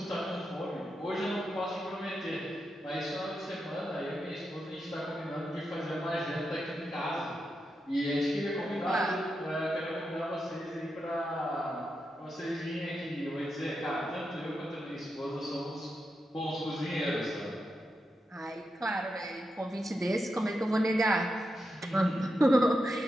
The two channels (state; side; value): normal; both; correlation 0.87